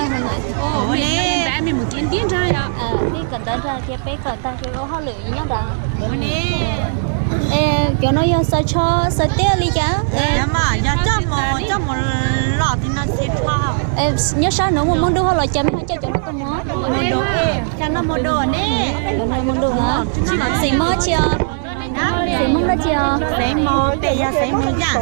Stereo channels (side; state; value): left; silent; digital silence